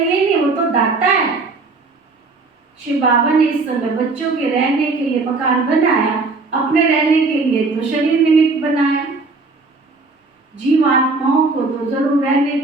ही नहीं, वो तो दाता है। शिव बाबा ने इस समय बच्चों के रहने के लिए मकान बनाया, अपने रहने के लिए तो शरीर निमित्त बनाया। जीवात्माओं को तो जरूर रहने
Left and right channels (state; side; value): quieter; left; 3.8 dB